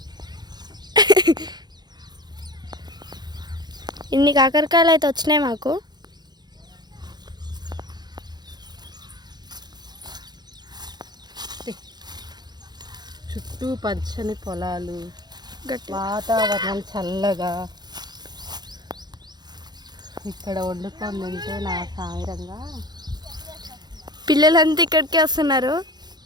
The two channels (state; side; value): late; left; 0.20 ms